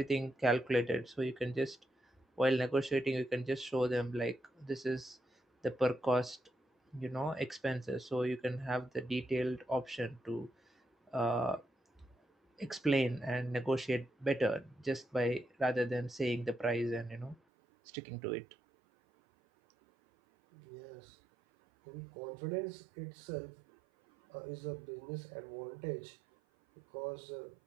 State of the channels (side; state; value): left; drops out; at 17.4 s